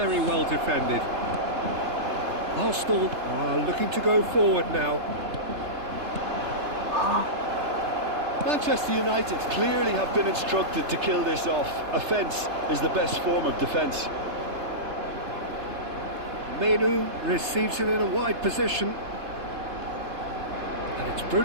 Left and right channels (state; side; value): late; left; 3.3 ms